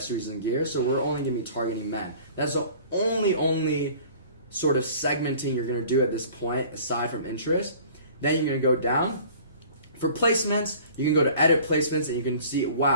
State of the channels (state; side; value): inverted; both; correlation -0.48